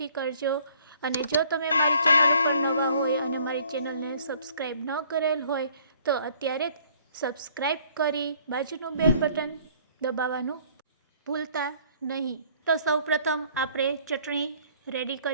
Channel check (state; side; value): inverted; both; correlation -0.59